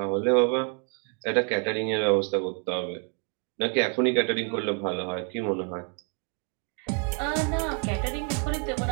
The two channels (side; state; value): left; quieter; 39.6 dB